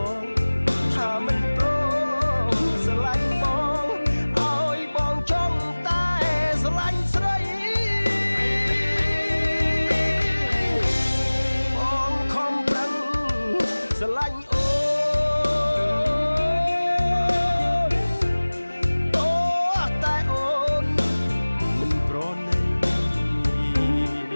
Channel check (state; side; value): inverted; both; correlation -1.00